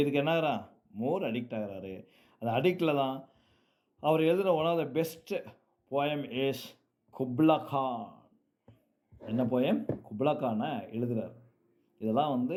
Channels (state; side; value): identical; both; correlation 1.00